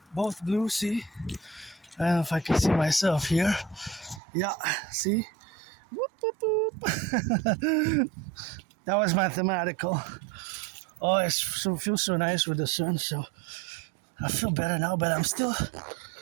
both blue, see? I don't know if I can see myself here. Yeah, see? Whoop, whoop, whoop. That was mathematical. Oh, it feels so nice with the sun, so I feel better now, but I still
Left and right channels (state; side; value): drops out; left; at 4.2 s